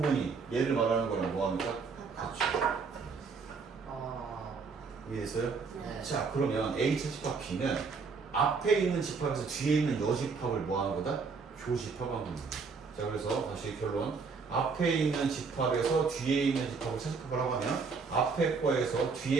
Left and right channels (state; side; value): quieter; left; 5.0 dB